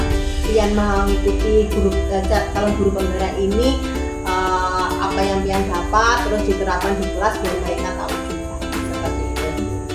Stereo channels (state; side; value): identical; both; correlation 1.00